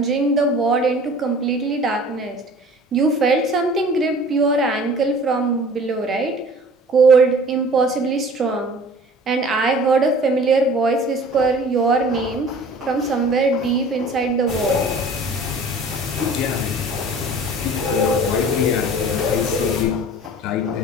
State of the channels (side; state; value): both; normal; correlation 0.46